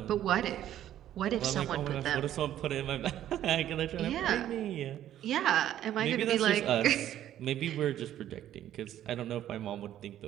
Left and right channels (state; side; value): quieter; left; 11.8 dB